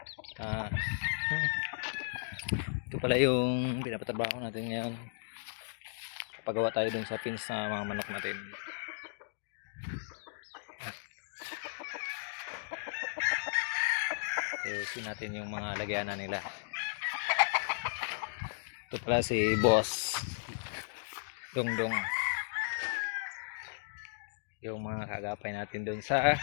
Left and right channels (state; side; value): silent; right; digital silence